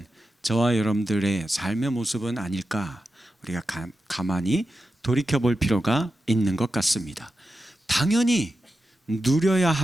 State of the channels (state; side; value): normal; both; correlation 0.90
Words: 저와 여러분들의 삶의 모습은 아닐까, 우리가 가만히 돌이켜볼 필요가 있는 것 같습니다. 당연히 누려야